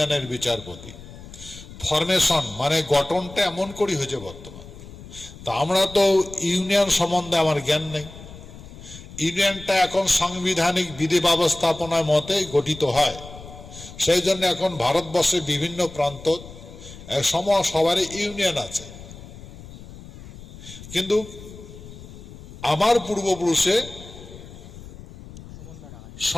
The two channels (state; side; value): noise; left; rumble, 16 dB below the sound